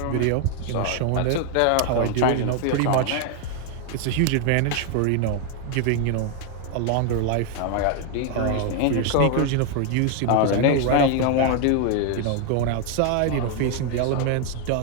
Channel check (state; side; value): different; both; correlation 0.00